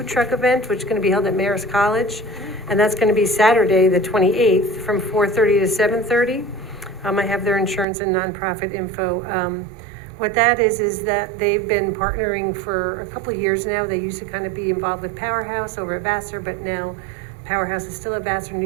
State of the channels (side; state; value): left; drops out; at 7.9 s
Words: truck event, which is gonna be held at Marist College. And that's gonna be Saturday, the 28th, from 4:30 to 7:30. I have their insurance and nonprofit info. What that is that they've been partnering for a couple of years now. They used to kind of be involved with Powerhouse over at Vassar, but now Powerhouse is still at Vassar,